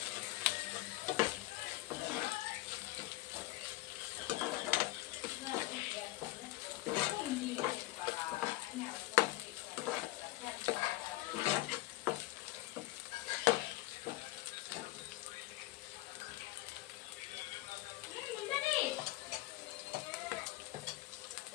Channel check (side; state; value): right; quieter; 18.2 dB